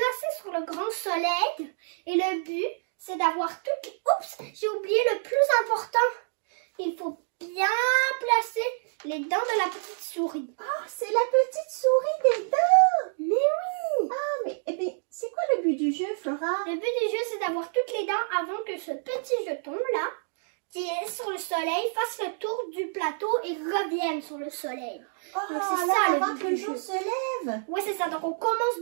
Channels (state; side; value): silent; left; digital silence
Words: sur le grand soleil. Et le but, c'est d'avoir toutes les... Oups, j'ai oublié le plus important. Il faut bien placer les dents de la petite souris. Ah, c'est la petite souris des dents. Mais oui! Ah, mais c'est quoi le but du jeu, Flora? Le but du jeu, c'est d'avoir toutes les dents avant que ce petit jeton-là, qui est sur le soleil, fasse le tour du plateau et revienne sur le soleil. Oh, Donc, c'est là, ça, le avant but que du le jour jeu. se lève. Oui, c'est ça. Donc, on commence